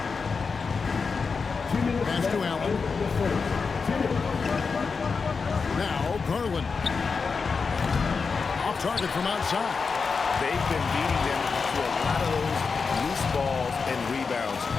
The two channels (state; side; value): quieter; right; 5.0 dB